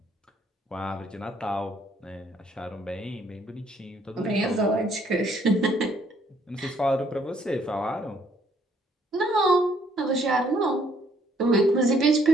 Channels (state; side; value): normal; both; correlation 0.66